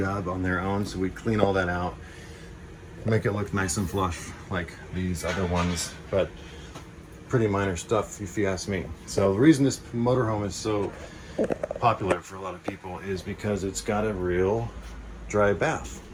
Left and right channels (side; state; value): both; identical; correlation 1.00